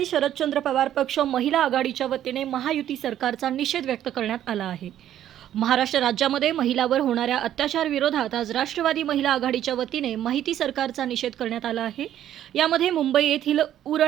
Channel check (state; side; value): quieter; left; 11.4 dB